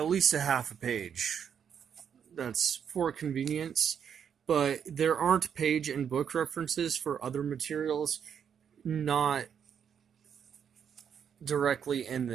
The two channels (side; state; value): left; quieter; 7.9 dB